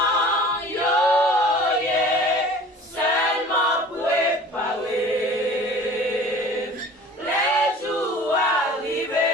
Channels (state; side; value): normal; both; correlation 0.44